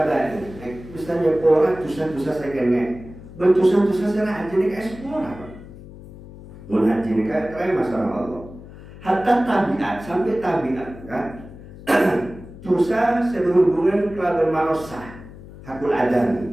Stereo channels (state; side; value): noise; left; hum, 17 dB below the sound